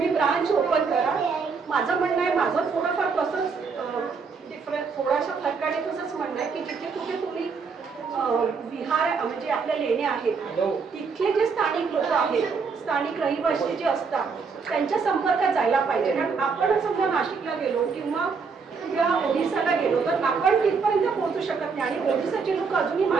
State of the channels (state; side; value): quieter; left; 5.2 dB